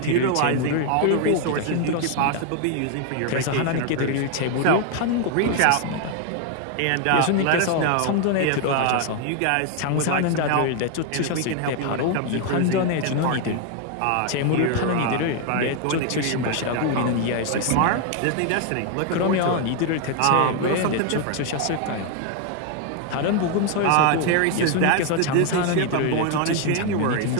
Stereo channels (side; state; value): both; different; correlation 0.01